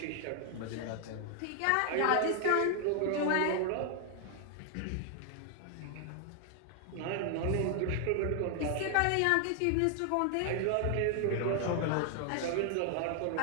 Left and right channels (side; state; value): both; different; correlation 0.00